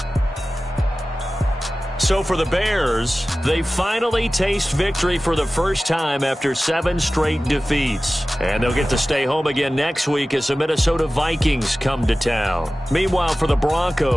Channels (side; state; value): both; normal; correlation 0.96